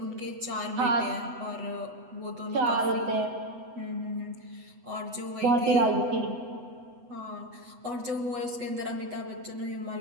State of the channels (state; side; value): late; left; 8.1 ms